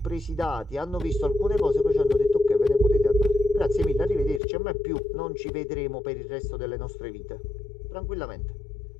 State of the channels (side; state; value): right; drops out; at 4.4 s